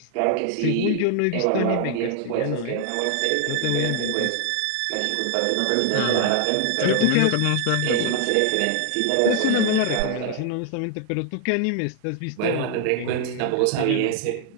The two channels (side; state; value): both; different; correlation 0.00